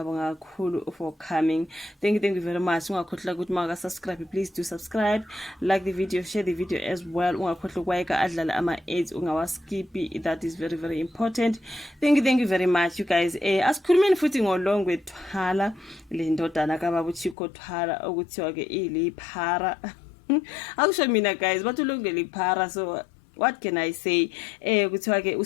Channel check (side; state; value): right; drops out; at 17.4 s